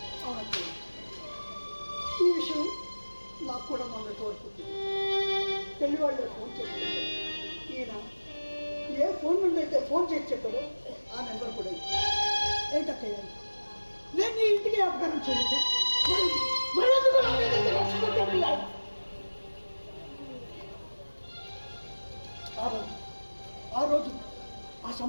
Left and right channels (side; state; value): both; inverted; correlation -1.00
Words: అవునండి, ఈ విషయం నాకు కూడా మొన్న తోడుకుంటుంది. పెళ్లి వాళ్ళు ఫోన్ చేసి ఈయన ఏ ఫోన్ నుండి అయితే ఫోన్ చేసి చెప్పారో ఆ నెంబర్ కూడా ఏంటక్కయ్య, నేను నీ ఇంటికి అపకారం చేయలేదు. ఆ రోజు ఆ